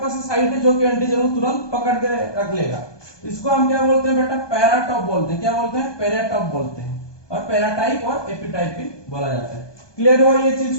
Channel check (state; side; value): late; right; 1.2 ms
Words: साइट है जो कि एंटीजन को तुरंत पकड़ के रख लेगा। इसको हम क्या बोलते हैं बेटा? पैराटॉप बोलते हैं। क्या बोलते हैं? पैराटॉप बोलते हैं। और पैराटाइप और एपिटाइप भी बोला जाता है। क्लियर हुआ ये चीज